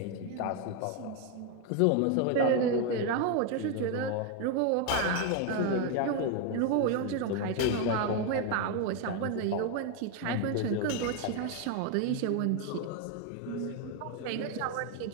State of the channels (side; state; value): both; different; correlation 0.01